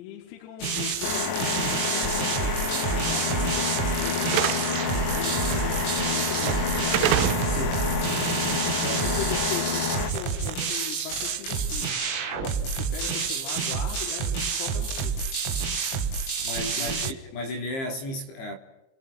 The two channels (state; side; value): late; right; 22 ms